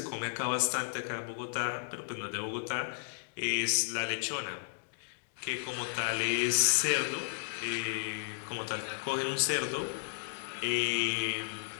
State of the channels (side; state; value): right; silent; digital silence